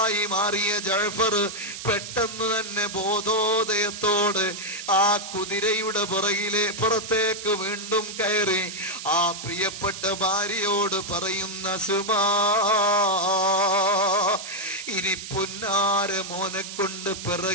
മാറിയ ജഅഫർ പെട്ടെന്ന് തന്നെ ബോധോദയത്തോട് ആ കുതിരയുടെ പുറത്തേക്ക് വീണ്ടും കയറി ആ പ്രിയപ്പെട്ട ഭാര്യയോട് പറയുന്ന, സുമാ, ഇനി പുന്നാര മോനെ കൊണ്ട്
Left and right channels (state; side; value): noise; right; hiss, 9 dB below the sound